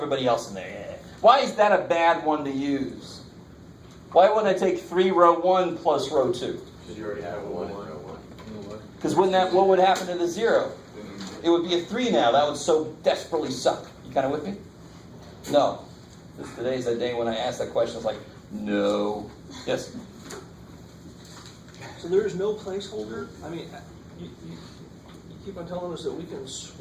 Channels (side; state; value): both; identical; correlation 1.00